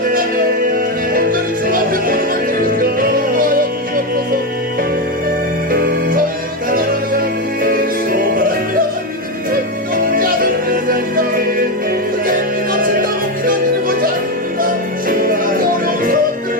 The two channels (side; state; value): both; normal; correlation 0.10